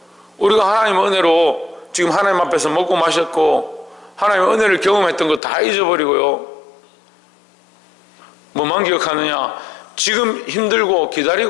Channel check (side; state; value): right; drops out; at 5.4 s